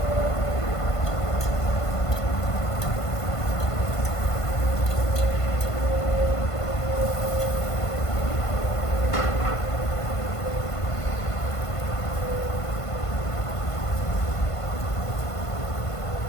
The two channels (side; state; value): right; late; 1.5 ms